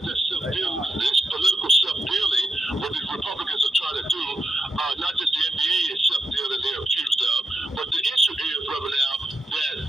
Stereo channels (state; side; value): normal; both; correlation 0.83